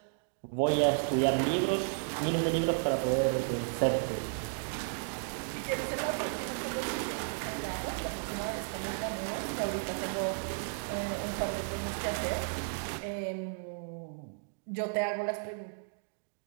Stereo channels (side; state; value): left; silent; digital silence